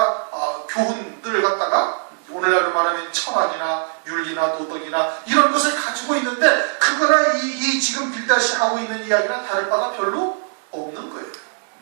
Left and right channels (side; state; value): left; silent; digital silence